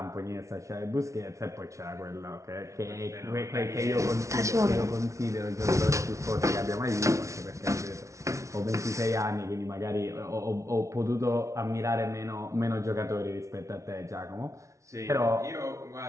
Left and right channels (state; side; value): late; left; 0.14 ms